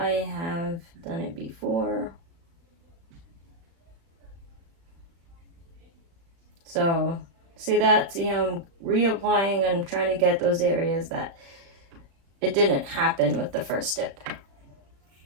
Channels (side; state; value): left; late; 36 ms